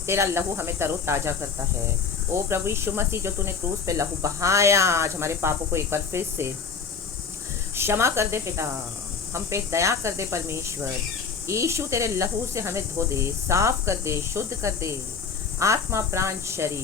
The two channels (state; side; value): quieter; right; 5.6 dB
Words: तेरा लहू हमें तरोताजा करता है। ओ प्रभु यीशु मसीह, जो तूने क्रूस पे लहू बहाया, आज हमारे पापों को एक बार फिर से क्षमा कर दे पिता, हम पे दया कर दे परमेश्वर। यीशु तेरे लहू से हमें धो दे, साफ कर दे, शुद्ध कर दे, आत्मा प्राण